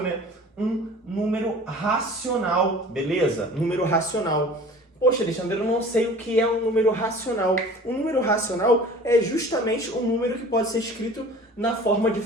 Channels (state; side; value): normal; both; correlation 0.44